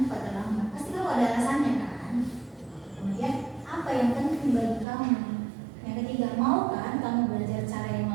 terlambat? Pasti kamu ada alasannya kan? Kemudian apa yang penting bagi kamu? Yang ketiga, mau kan kamu belajar cara yang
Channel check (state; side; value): drops out; left; at 4.9 s